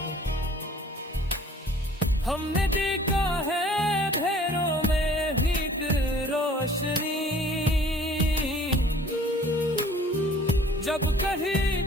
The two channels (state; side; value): normal; both; correlation 0.52